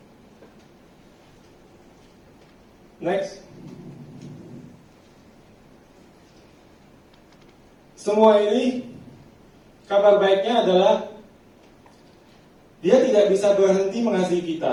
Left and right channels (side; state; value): both; identical; correlation 1.00